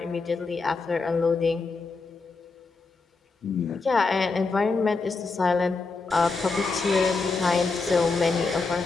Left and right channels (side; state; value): right; quieter; 4.1 dB